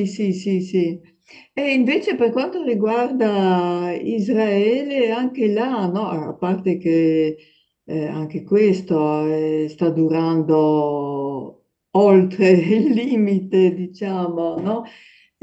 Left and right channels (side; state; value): both; identical; correlation 1.00